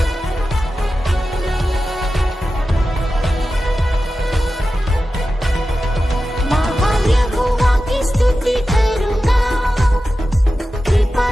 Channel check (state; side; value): normal; both; correlation 0.93